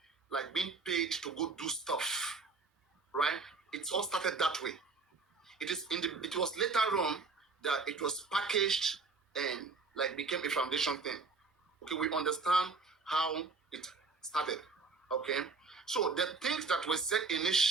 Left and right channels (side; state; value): left; quieter; 4.1 dB